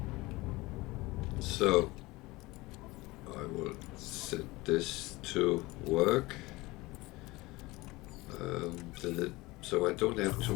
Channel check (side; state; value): right; quieter; 21.3 dB